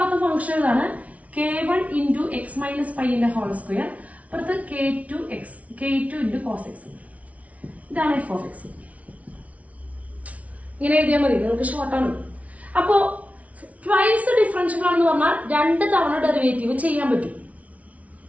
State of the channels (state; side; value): late; left; 0.067 ms